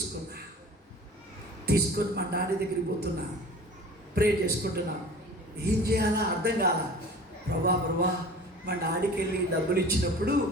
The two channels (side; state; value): both; normal; correlation 0.42